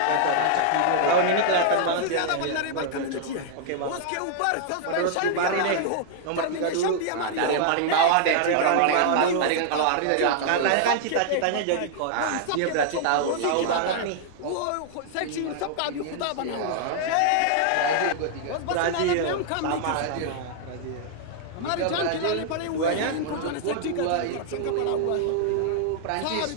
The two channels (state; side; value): different; both; correlation -0.01